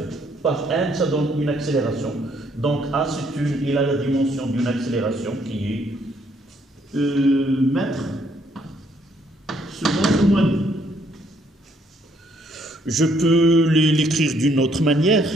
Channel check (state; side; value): normal; both; correlation 0.68